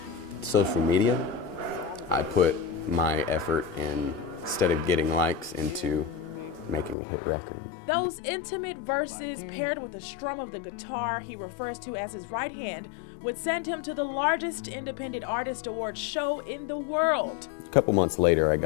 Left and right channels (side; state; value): right; drops out; at 7.0 s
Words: social media, I put my effort in, instead of getting likes, into making a hit record. Those intimate verses paired with the strum of the guitar he refers to as his right hand would send him to the largest independent artist award show in the world. A couple months later, I